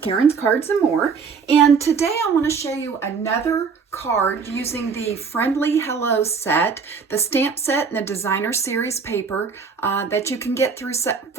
Karen's Cards and More, and today I want to show you another card using the Friendly Hello set, the stamp set and the designer series paper that you can get through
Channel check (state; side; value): quieter; left; 5.5 dB